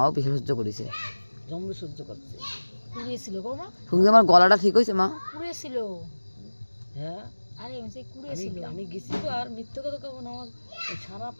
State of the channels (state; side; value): inverted; both; correlation -1.00